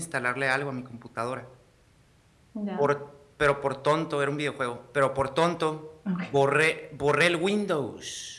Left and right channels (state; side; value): identical; both; correlation 1.00